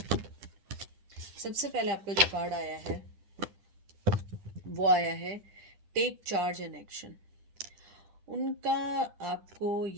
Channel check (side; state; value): left; late; 9.9 ms